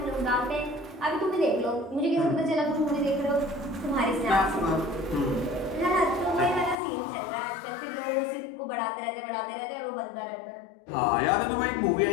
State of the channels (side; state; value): right; drops out; at 6.8 s